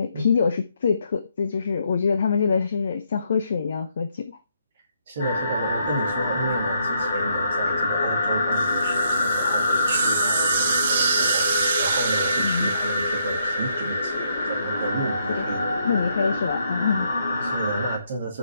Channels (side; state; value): both; inverted; correlation -0.74